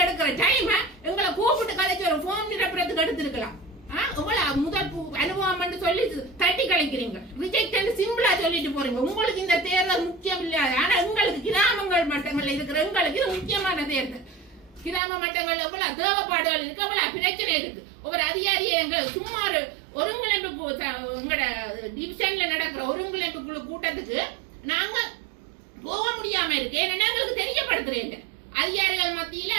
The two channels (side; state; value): left; drops out; at 15.0 s